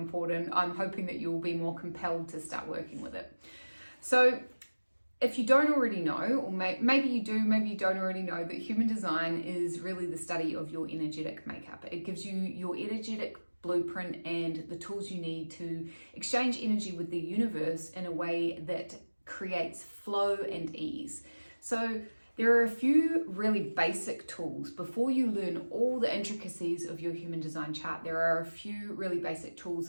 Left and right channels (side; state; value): both; inverted; correlation -1.00